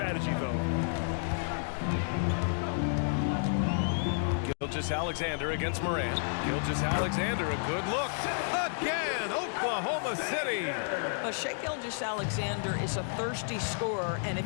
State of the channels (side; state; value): right; silent; digital silence